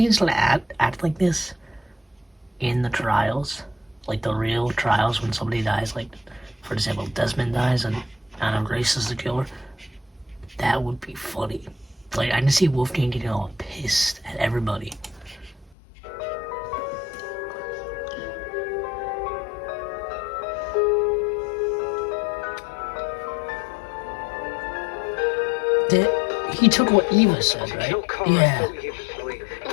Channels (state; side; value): drops out; right; at 15.8 s